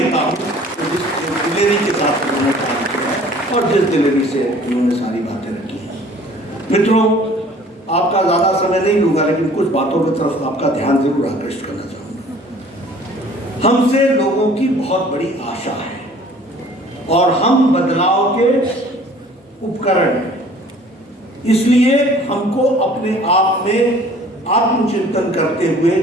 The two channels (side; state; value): both; normal; correlation 0.51